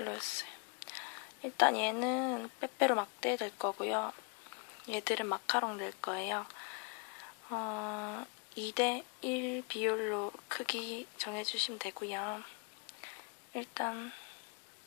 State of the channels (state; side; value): quieter; right; 35.4 dB